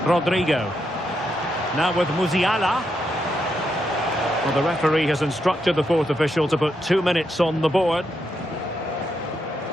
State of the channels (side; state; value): both; normal; correlation 0.81